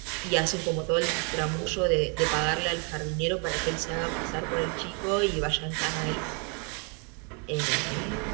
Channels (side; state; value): left; quieter; 37.0 dB